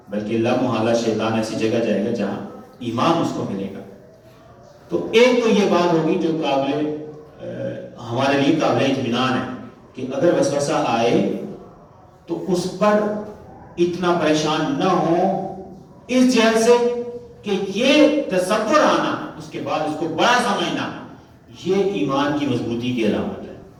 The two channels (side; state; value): both; identical; correlation 1.00